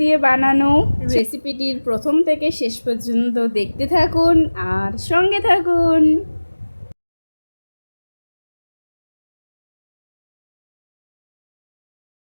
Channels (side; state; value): both; inverted; correlation -1.00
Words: বানানো। রেসিপিটির প্রথম থেকে শেষ পর্যন্ত দেখতে থাকুন আর সঙ্গে থাকুন।